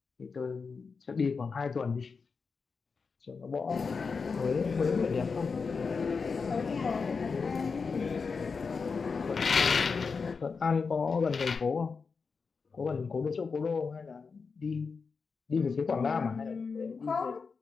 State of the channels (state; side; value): quieter; right; 5.0 dB